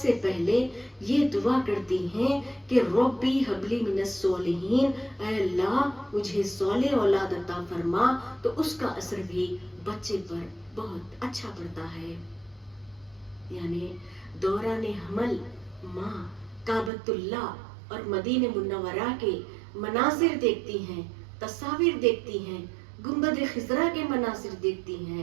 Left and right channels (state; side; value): drops out; left; at 16.9 s